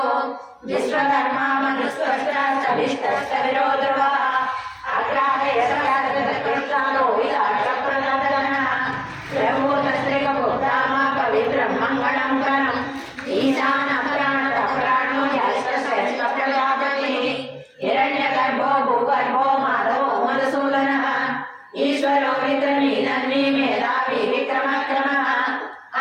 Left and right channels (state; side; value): identical; both; correlation 1.00